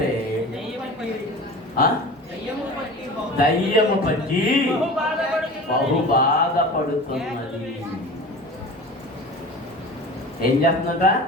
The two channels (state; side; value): normal; both; correlation 0.37